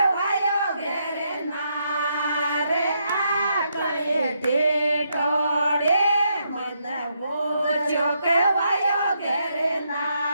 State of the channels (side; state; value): both; inverted; correlation -0.78